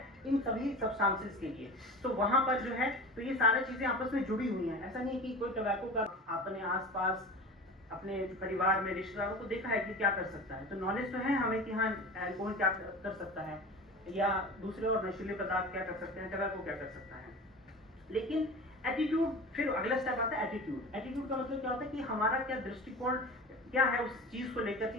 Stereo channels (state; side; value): normal; both; correlation 0.33